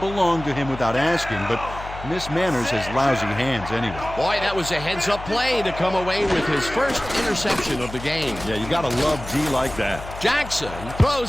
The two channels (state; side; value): noise; left; hum, 12 dB below the sound